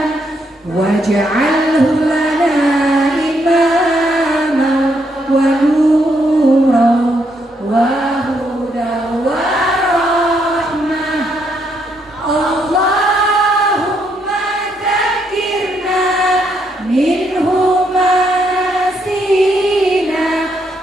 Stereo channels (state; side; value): normal; both; correlation 0.75